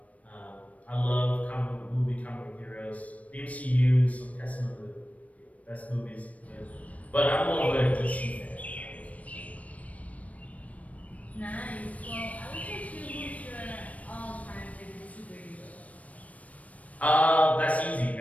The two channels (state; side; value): late; right; 0.068 ms